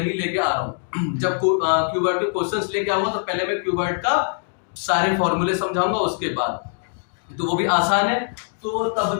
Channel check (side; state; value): right; silent; digital silence